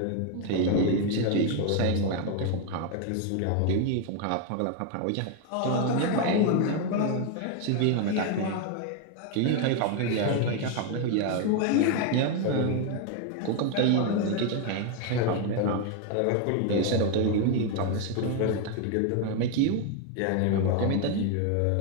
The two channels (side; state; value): both; different; correlation 0.01